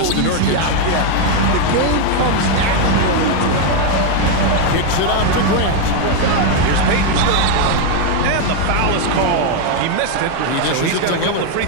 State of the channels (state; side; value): different; both; correlation 0.01